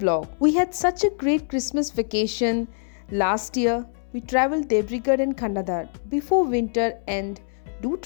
We had such a great Christmas vacation last year. We traveled Debrigad and Khandadar before winter end. Do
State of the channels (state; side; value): silent; right; 63 dB below the other